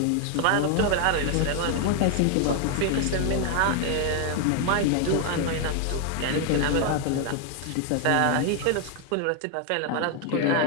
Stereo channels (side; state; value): both; different; correlation 0.00